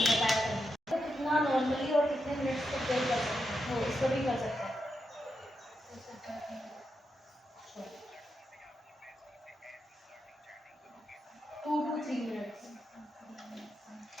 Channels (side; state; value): both; normal; correlation 0.86